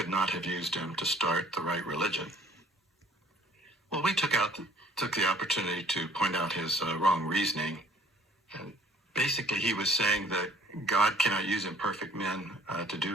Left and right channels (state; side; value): normal; both; correlation 0.56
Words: not have used him to start the right religion. Well, we took the opportunity to point out his wrong reasoning. And basically, he was saying that God cannot use imperfect men to do